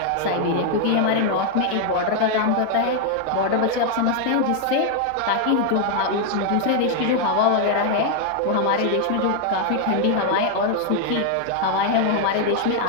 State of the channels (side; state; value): both; different; correlation 0.00